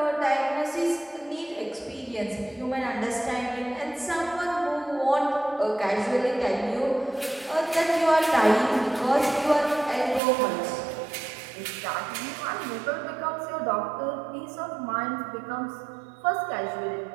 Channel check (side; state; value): left; drops out; at 10.2 s